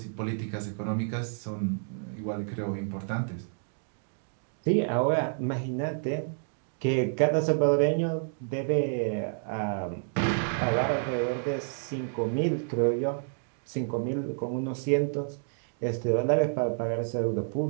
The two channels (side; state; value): left; silent; digital silence